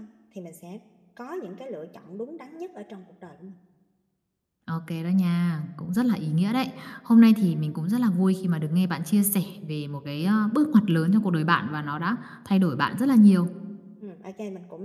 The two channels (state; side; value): identical; both; correlation 1.00